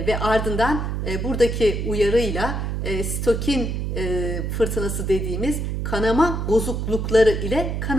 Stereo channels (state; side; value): noise; right; hum, 2 dB below the sound